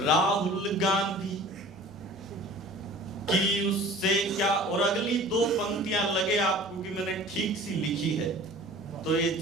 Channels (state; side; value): normal; both; correlation 0.44